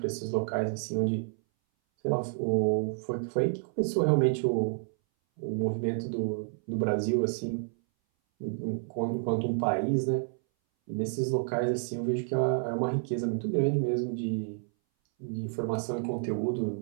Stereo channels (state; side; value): silent; left; 58 dB below the other